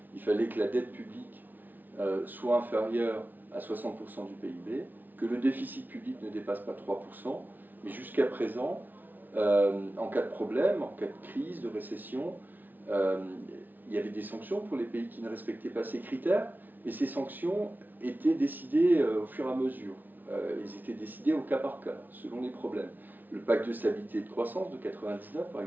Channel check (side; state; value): left; late; 0.086 ms